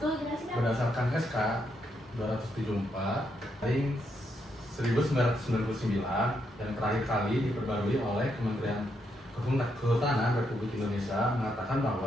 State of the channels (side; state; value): both; normal; correlation 0.79